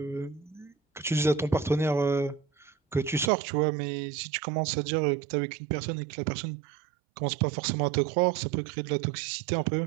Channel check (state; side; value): drops out; left; at 3.3 s